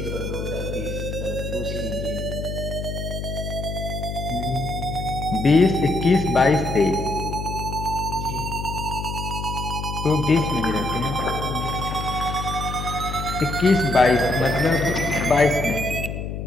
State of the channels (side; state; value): left; noise; hum, 5 dB below the sound